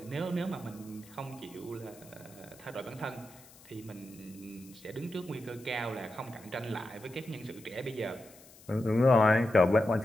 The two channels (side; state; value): left; noise; hiss, 23 dB below the sound